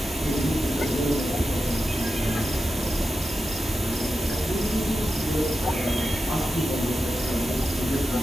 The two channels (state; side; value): normal; both; correlation 0.90